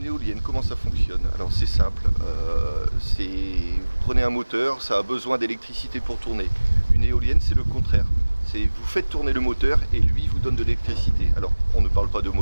éolienne, comment ça fonctionne? Alors c'est simple, vous prenez un moteur, ça a besoin d'électricité pour tourner. Une éolienne, c'est le contraire. Vous faites tourner le moteur et lui vous donne de l'électricité. Alors on ne parle pas de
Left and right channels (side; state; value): both; inverted; correlation -1.00